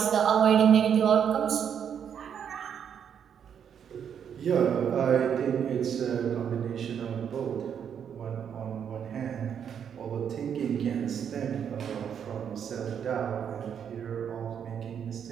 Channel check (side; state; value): left; quieter; 8.1 dB